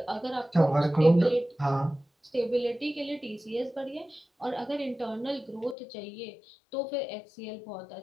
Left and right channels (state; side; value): drops out; right; at 5.8 s